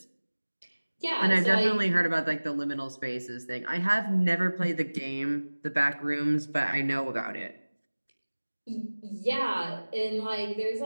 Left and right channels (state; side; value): inverted; both; correlation -1.00